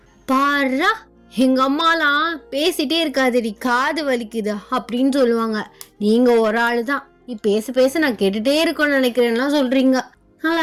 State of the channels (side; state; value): both; identical; correlation 1.00